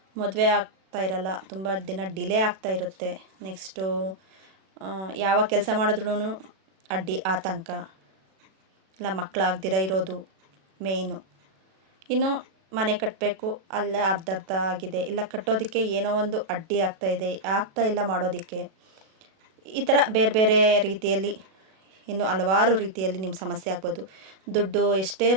ಮದುವೆ ಆಗ್ತಾ ಇರಲ್ಲ, ತುಂಬ ದಿನ ಡಿಲೇ ಆಗ್ತಾ ಇರುತ್ತೆ. ನೆಕ್ಸ್ಟು ಯಾವ ಕೆಲಸ ಮಾಡಿದ್ರೂ ಅಡ್ಡಿ ಆತಂಕ, ಇಲ್ಲ ಮಕ್ಕಳಾಗ್ದಿರ ಇರೋದು ಮೇಯ್ನು. ಇನ್ನು ಮನೆ ಕಟ್ಟಬೇಕು, ಅಲ್ಲೇ ಅರ್ಧ ಆಗಿದೆ, ಇಲ್ಲ ಕಟ್ಟೋದಕ್ಕೆ ಏನೋ ಒಂದು ಅಡ್ಡಿ ಆಗ್ತಾ ಇಲ್ಲ ಮಾಡೋದಕ್ಕೆ. ಈ ಥರ ಬೇರೆ ಬೇರೆ ರೀತಿಯಲ್ಲಿ ಇನ್ನು ಹಲವಾರು ರೀತಿಯಲ್ಲಿ ನಿಮ್ಮ ಸಮಸ್ಯೆ ಆಗ್ಬೋದು. ದುಡ್ಡು ಎಷ್ಟೇ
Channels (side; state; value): left; late; 37 ms